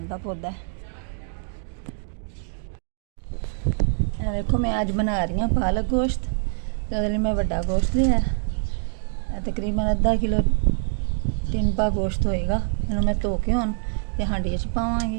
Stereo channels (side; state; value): left; silent; digital silence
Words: का पौधा। देखो मैं आज बना रही हूँ पालक गोश्त। तो मैं बड़ा गोश्त लिया, तकरीबन अद्धा किलो टिनपा गोश्त होएगा। इन्हों मैं धो के हुण ते हांडी च